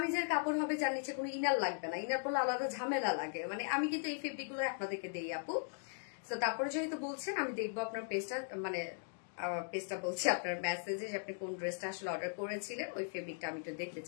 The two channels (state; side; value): silent; right; digital silence